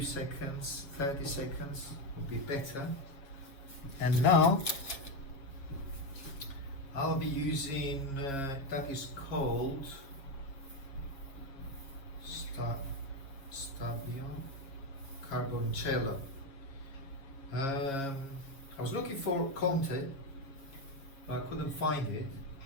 seconds, 30 seconds would be better. And now I'll be using that is called Stabio Carboncello. I was looking for Conte, but I couldn't find it,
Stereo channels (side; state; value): right; late; 7.3 ms